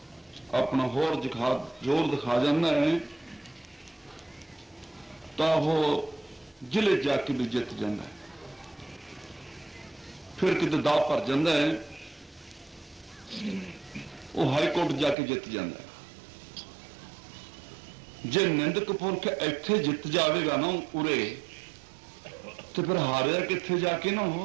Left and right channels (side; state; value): left; drops out; at 15.2 s